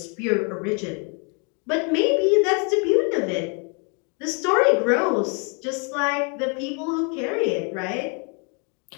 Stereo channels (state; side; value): quieter; right; 36.6 dB